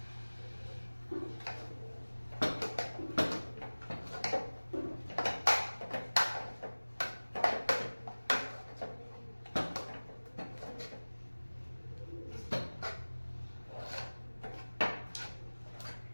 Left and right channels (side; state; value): both; inverted; correlation -1.00